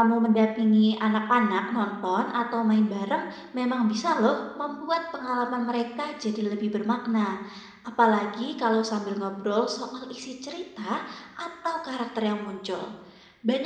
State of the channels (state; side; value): identical; both; correlation 1.00